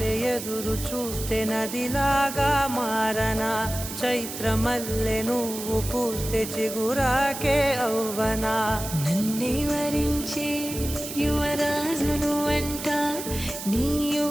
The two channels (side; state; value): right; noise; hiss, 8 dB below the sound